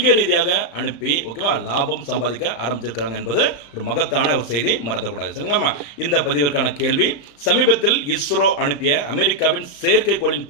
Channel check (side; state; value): right; late; 35 ms